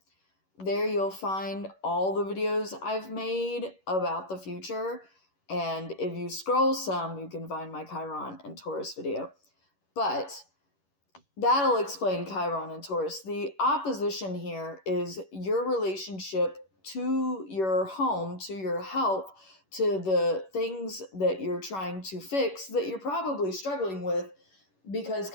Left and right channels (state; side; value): late; right; 11 ms